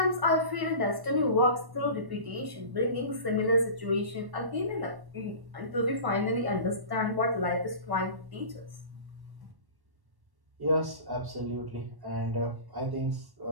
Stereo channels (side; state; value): left; late; 1.1 ms